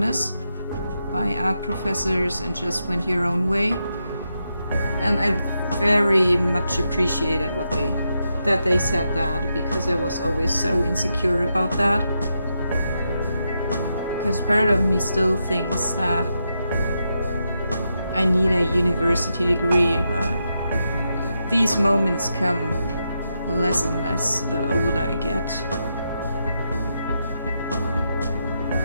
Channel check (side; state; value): both; inverted; correlation -0.84